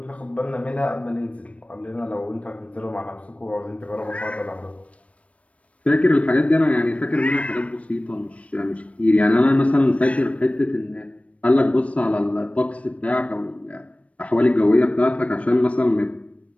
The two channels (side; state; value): right; late; 0.064 ms